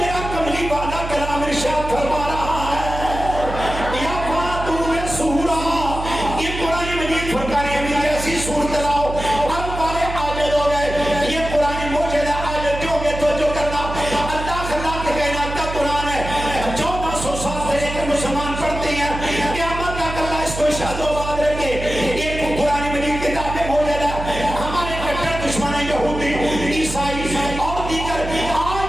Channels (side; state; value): right; noise; hum, 7 dB below the sound